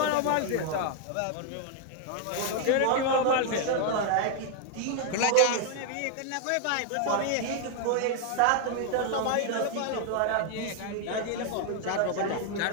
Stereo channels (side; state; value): both; different; correlation 0.00